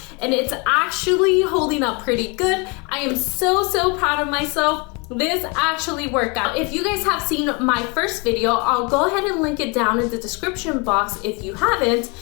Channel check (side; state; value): right; quieter; 30.6 dB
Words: and it's actually holding up pretty good. I am so proud of myself. This actually worked out. If you guys have seen my first video, I'll go ahead and link it down in the description box if you haven't.